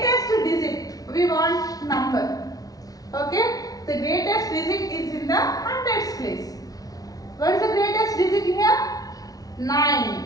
digit, we want number. Okay? The greatest digit is in the hundreds place. What is the greatest digit here? 9.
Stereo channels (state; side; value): late; right; 0.18 ms